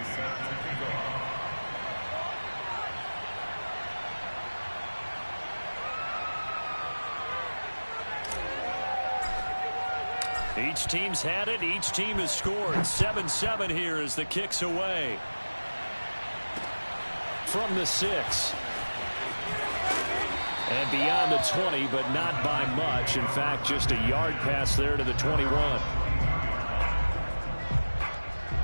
Each team's had it. Each team has scored. 7-7 here as the kick's away. From the 6. And beyond the 20, but not by much. In fact, just a yard pass there to the 21.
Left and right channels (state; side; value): inverted; both; correlation -1.00